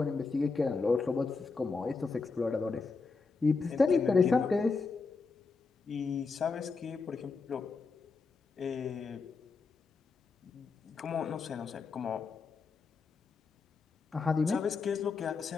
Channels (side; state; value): right; quieter; 4.4 dB